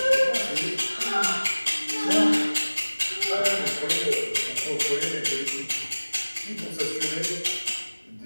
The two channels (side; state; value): both; inverted; correlation -1.00